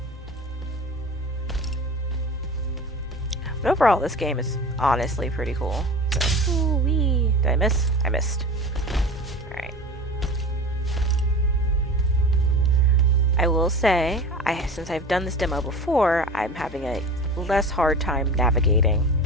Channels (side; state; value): both; normal; correlation 0.35